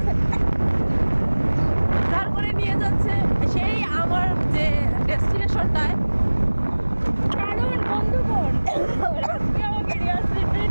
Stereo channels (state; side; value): inverted; both; correlation -1.00